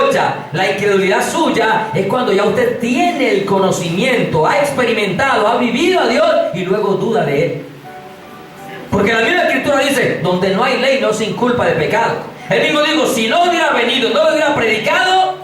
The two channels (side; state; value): both; identical; correlation 1.00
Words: la incredulidad suya es cuando ya usted tiene el conocimiento, ha experimentado, ha vivido a Dios y luego duda de Él. Porque la misma Escritura dice: donde no hay ley no se inculpa de pecado. Él mismo dijo: si no hubiera venido, no lo hubiera predicado,